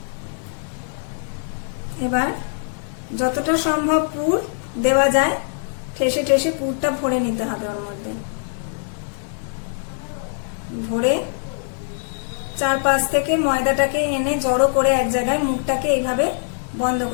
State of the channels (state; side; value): silent; right; digital silence